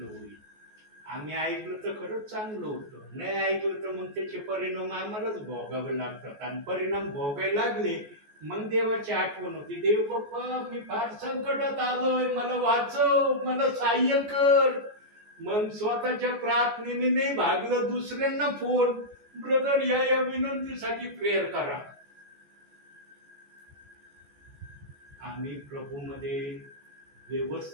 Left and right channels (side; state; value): left; late; 14 ms